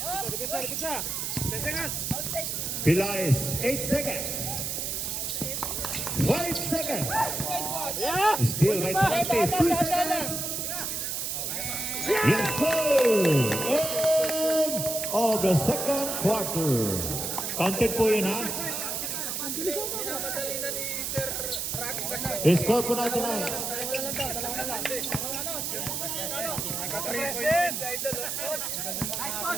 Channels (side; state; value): right; noise; hiss, 2 dB below the sound